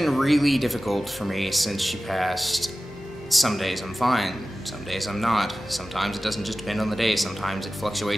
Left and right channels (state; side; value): normal; both; correlation 0.96